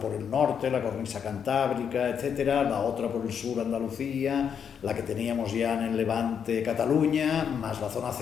el norte, la cornisa cantábrica, etcétera, la otra por el sur, Andalucía, la que teníamos ya en el Levante, Cataluña, más la zona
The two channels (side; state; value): right; quieter; 7.6 dB